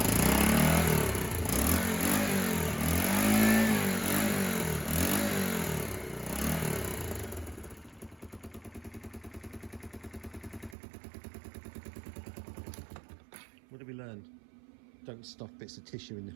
What did we learn? Don't stuff bits of tissue in the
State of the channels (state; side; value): drops out; left; at 10.8 s